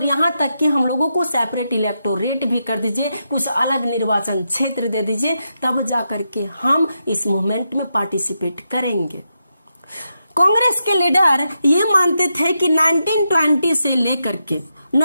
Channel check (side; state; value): both; inverted; correlation -0.85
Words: यहाँ तक कि हम लोगों को सेपरेट इलेक्टोरेट भी कर दीजिए, कुछ अलग निर्वाचन क्षेत्र दे दीजिए, तब जाकर के हम इस मूवमेंट में पार्टिसिपेट करेंगे। कांग्रेस के लीडर ये मानते थे कि 1920 से लेकर के